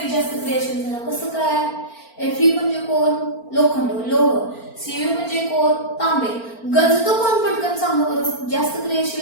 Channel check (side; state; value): right; late; 4.4 ms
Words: जास्त क्रियाशील झाला. कसं काय Fe म्हणजे कोण लोखंड लोह. Cu म्हणजे कोण तांबे. गंजतो कोण पटकन सांगा बरं. जास्त